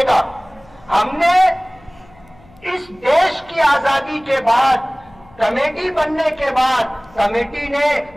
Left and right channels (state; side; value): noise; left; hum, 27 dB below the sound